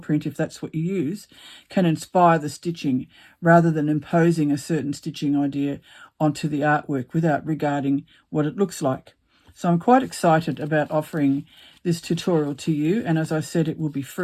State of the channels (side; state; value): both; identical; correlation 1.00